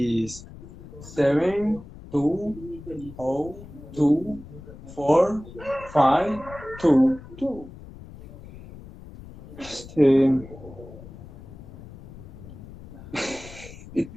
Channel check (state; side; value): noise; left; rumble, 16 dB below the sound